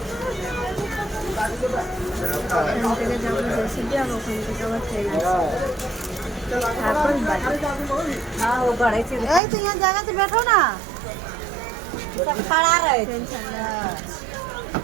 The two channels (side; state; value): left; drops out; at 9.4 s